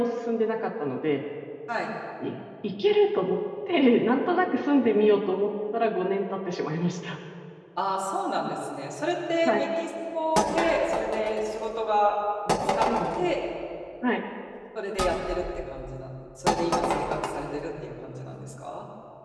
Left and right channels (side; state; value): both; identical; correlation 1.00